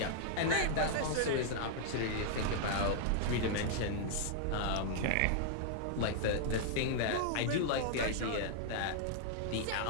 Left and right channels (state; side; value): different; both; correlation -0.01